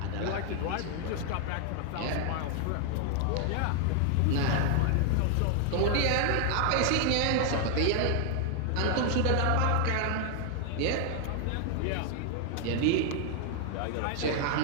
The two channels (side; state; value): both; different; correlation 0.00